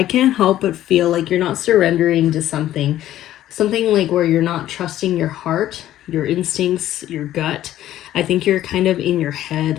can't help but feel like you're not surrendering to something. Something like where you're not trusting your heart, your instincts, your gut. I think you're kind of in your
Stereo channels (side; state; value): right; quieter; 13.1 dB